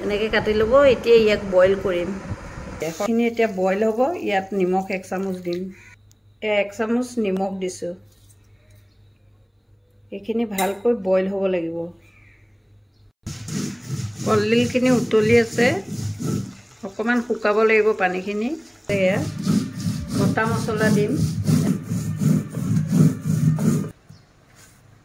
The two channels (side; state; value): both; identical; correlation 1.00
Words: এনেকৈ কাটি ল'ব। এতিয়া ইয়াক বইল কৰিম। এইখিনি এতিয়া বইল হ'ব। ইয়াত নিমখ 1 চামুচ দিম। 1 চামুচ নিমখ দিছোঁ। এইখিনি ভালকৈ বইল হ'ব লাগিব। কলডিলখিনি উতলি আছে, অকণমান শুকাব লাগিব পানীখিনি। এয়া গোটা মছলা দিম,